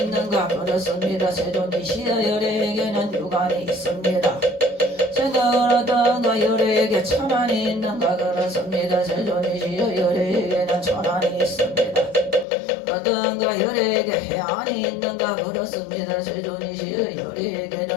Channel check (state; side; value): drops out; right; at 12.5 s